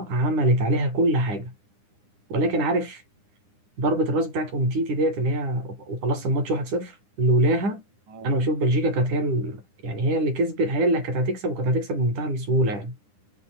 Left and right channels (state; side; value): late; left; 9.8 ms